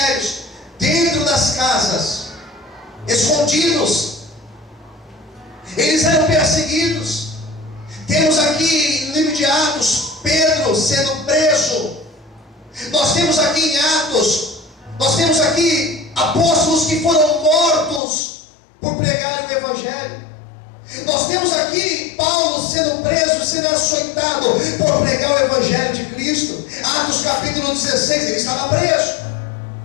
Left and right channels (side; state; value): right; drops out; at 18.0 s